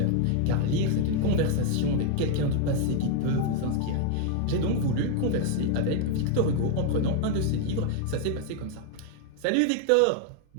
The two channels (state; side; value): different; both; correlation 0.00